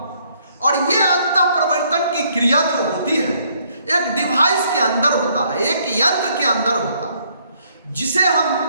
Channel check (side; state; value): both; inverted; correlation -0.67